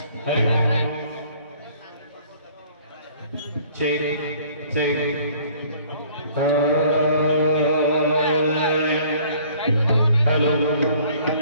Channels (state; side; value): inverted; both; correlation -0.56